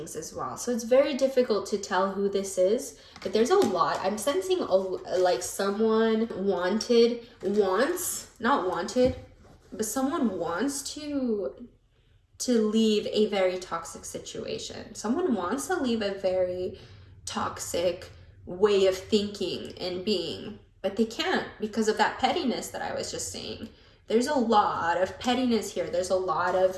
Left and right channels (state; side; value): identical; both; correlation 1.00